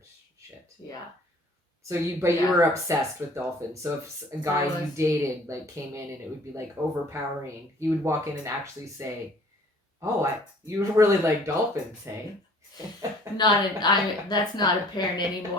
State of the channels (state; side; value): normal; both; correlation 0.53